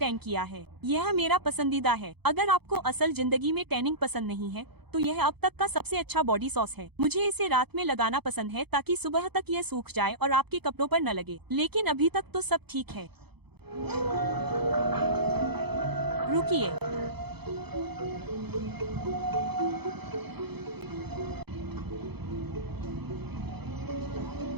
किया है। यह मेरा पसंदीदा है। अगर आपको असल जिंदगी में टैनिंग पसंद नहीं है तो यह अब तक का सबसे अच्छा बॉडी सॉस है। मुझे इसे रात में लगाना पसंद है ताकि सुबह तक यह सूख जाए और आपके कपड़ों पर न लगे। लेकिन अभी तक तो सब ठीक है। रुकिए,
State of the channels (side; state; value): left; late; 0.98 ms